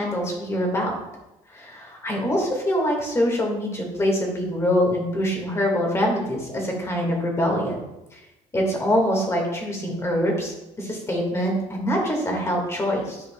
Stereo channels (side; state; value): both; normal; correlation 0.66